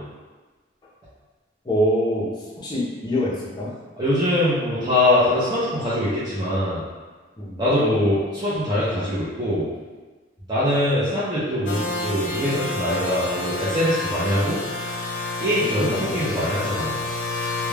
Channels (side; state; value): both; normal; correlation 0.40